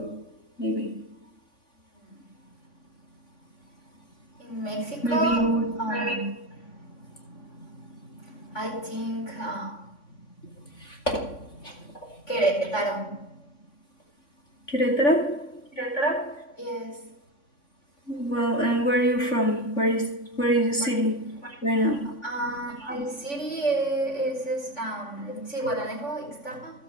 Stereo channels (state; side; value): late; right; 3.5 ms